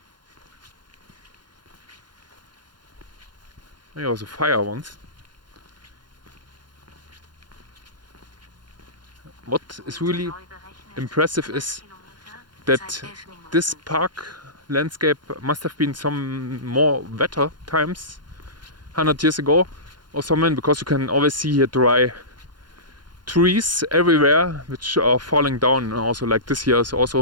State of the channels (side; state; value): left; late; 0.71 ms